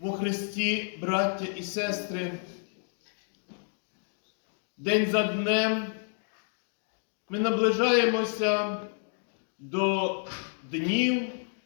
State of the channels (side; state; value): right; silent; 58 dB below the other